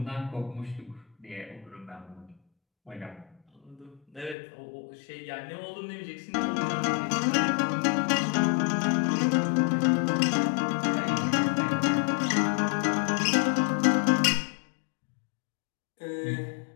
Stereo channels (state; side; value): drops out; right; at 4.4 s